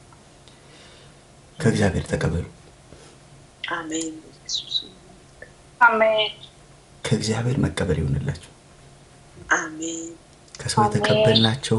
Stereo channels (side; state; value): both; identical; correlation 1.00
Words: ከእግዚአብሔር ተቀበሉ። አሜን አሜን። ከእግዚአብሔር መቀበል ይሆንላችሁ። አሜን። ከሰው